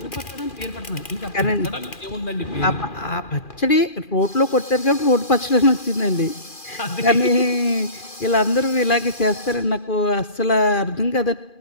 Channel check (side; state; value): right; late; 2.4 ms